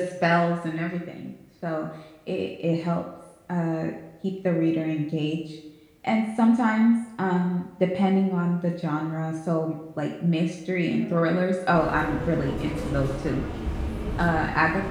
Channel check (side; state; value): both; identical; correlation 1.00